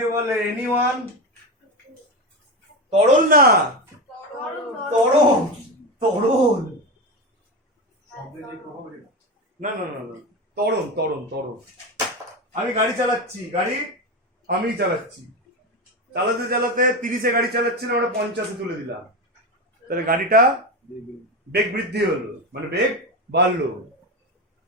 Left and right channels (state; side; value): normal; both; correlation 0.19